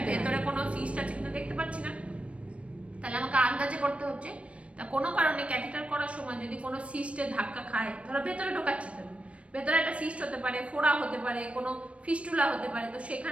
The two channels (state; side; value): late; left; 0.062 ms